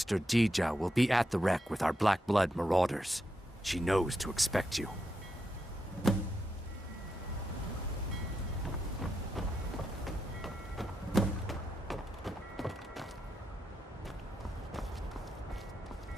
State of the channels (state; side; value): normal; both; correlation 0.84